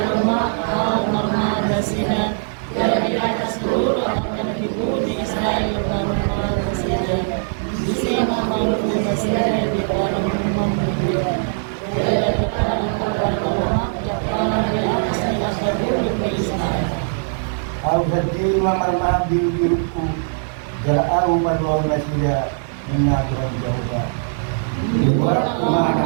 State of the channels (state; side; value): silent; left; 60 dB below the other